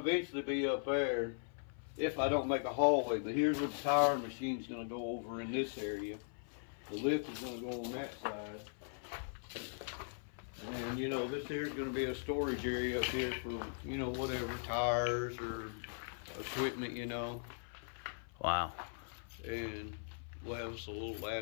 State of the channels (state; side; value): silent; right; 52 dB below the other